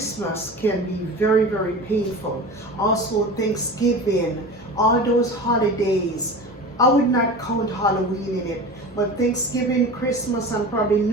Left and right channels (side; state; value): both; normal; correlation 0.33